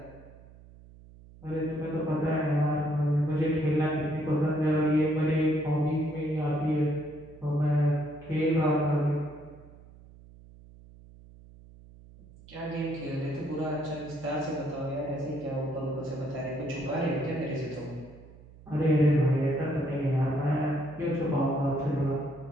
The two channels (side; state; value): right; noise; hum, 21 dB below the sound